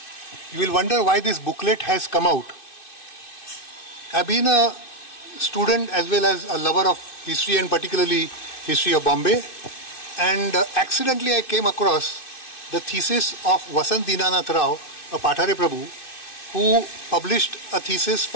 You will wonder why this booklet has come out. I've been a student as well as a lover of history and particularly history of Bombay, and accidentally I came across the thesis of Vasant Dinanath Rao, a Pathare Prabhu, who published a thesis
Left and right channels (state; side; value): late; right; 2.6 ms